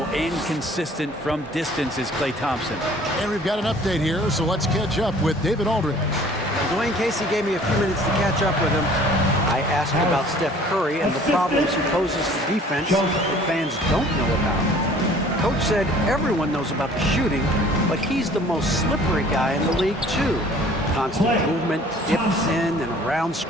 and consistent from distance is Klay Thompson. And we've got an update here, so let's catch up with David Aldridge. Dwayne Casey gave me a few minutes to catch up with him. I asked about Steph Curry and the problems he poses to defense that fans don't know about. Coach said everyone knows about the shooting, but he's the most slippery guy in the league, too. Constant movement, dips in and around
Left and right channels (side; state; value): both; normal; correlation 0.52